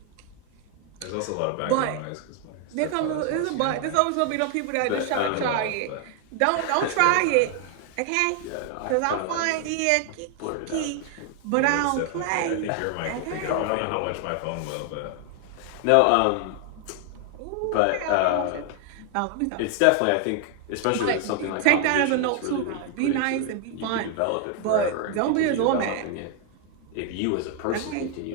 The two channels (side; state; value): both; different; correlation 0.00